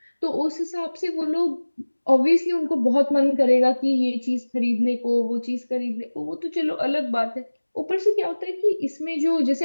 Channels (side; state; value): both; inverted; correlation -1.00